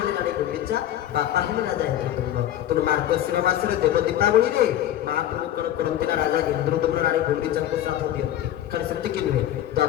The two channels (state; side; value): quieter; right; 12.1 dB